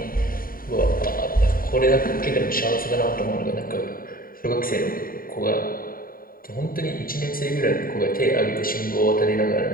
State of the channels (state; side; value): late; right; 0.42 ms